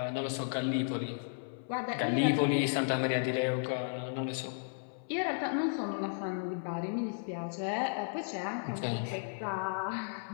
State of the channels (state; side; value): silent; right; 55 dB below the other